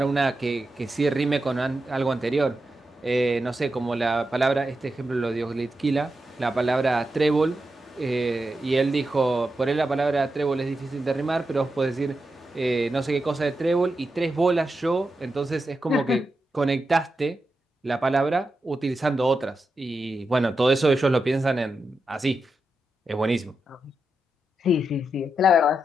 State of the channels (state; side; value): normal; both; correlation 0.88